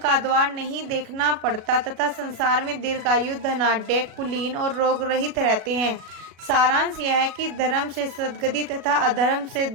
द्वार नहीं देखना पड़ता तथा संसार में दीर्घायु, धनाढ्य, कुलीन और रोग रहित रहते हैं। सारांश यह है कि धर्म से सद्गति तथा अधर्म से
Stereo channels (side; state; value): left; late; 37 ms